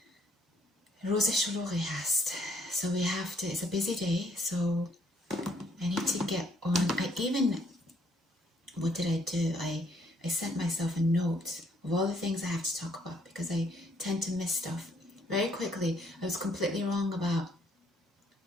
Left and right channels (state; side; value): normal; both; correlation 0.67